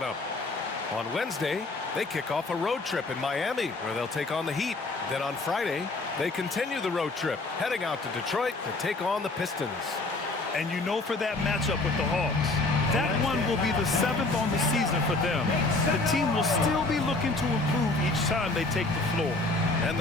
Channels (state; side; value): quieter; right; 3.1 dB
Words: up. On Wednesday, they kick off a road trip in Miami, where they'll take on the Heat. Then on Friday, they continue the road trip, heading out to Detroit to take on the Pistons. And you know, for that matchup with the Hawks, that one will be the 7th on the season for them. The team will still be looking to improve each time they take the floor. And